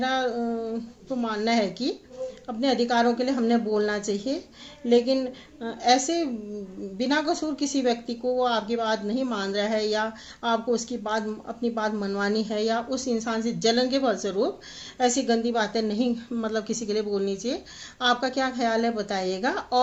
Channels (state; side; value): identical; both; correlation 1.00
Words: तो मानना है कि अपने अधिकारों के लिए हमने बोलना चाहिए। लेकिन ऐसे बिना कसूर किसी व्यक्ति को वो आपकी बात नहीं मान रहा है, या आपको उसकी बात अपनी बात मनवानी है, या उस इंसान से जलन के फलस्वरूप ऐसी गंदी बातें नहीं मतलब किसी के लिए बोलनी चाहिए। आपका क्या ख्याल है बताइएगा।